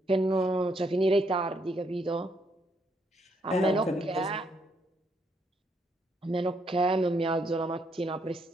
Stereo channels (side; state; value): both; normal; correlation 0.73